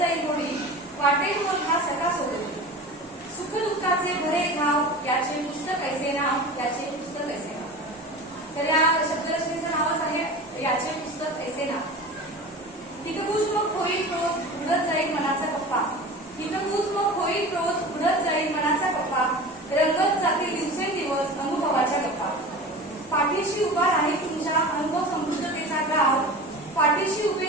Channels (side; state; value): both; normal; correlation 0.34